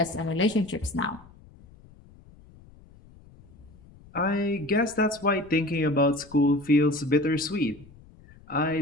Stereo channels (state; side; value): noise; left; rumble, 24 dB below the sound